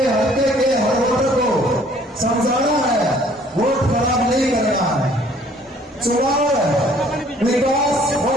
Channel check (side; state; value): both; normal; correlation 0.58